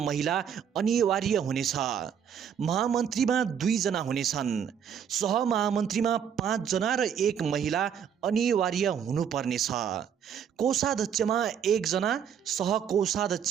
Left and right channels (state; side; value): quieter; left; 8.2 dB